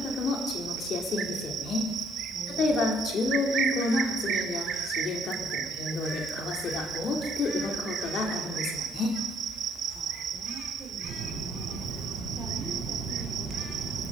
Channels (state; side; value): normal; both; correlation 0.65